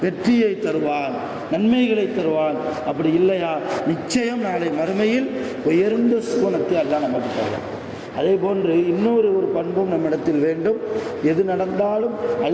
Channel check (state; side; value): identical; both; correlation 1.00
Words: வெற்றியை தருவான், நன்மைகளை தருவான். அப்படி இல்லையா நிச்சயம் நாளை மறுமையில் உயர்ந்த சுவனத்தை அல்லாஹ் நமக்கு தருவான். அதே போன்று இன்னொரு பண்பும் நம்மிடத்தில் வேண்டும். எது நடந்தாலும்